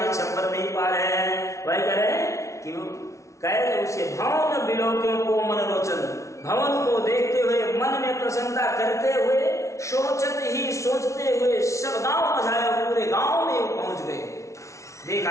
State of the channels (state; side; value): late; right; 0.14 ms